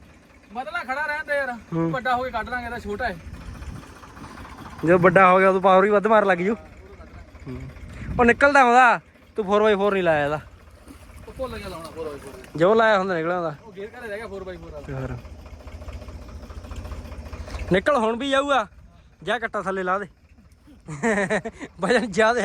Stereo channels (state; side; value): identical; both; correlation 1.00